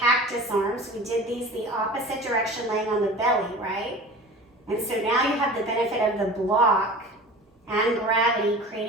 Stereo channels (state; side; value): normal; both; correlation 0.38